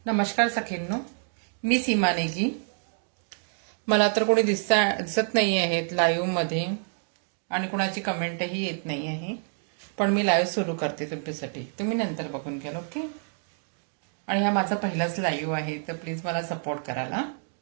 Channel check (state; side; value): silent; left; 57 dB below the other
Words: नमस्कार सखींनो, मी सीमा नेगी. मला तर कोणी दिसत नाही आहेत लाईव्ह मध्ये आणि कोणाची कमेंटही येत नाही आहे, पण मी लाईव्ह सुरू करते तुमच्यासाठी. तुम्ही नंतर बघून घ्याल, ओके? आणि हा माझा पहिलाच लाईव्ह आहे, तर प्लीज मला सपोर्ट करायला.